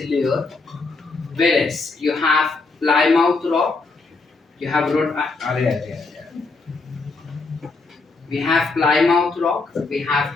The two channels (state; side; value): quieter; right; 3.8 dB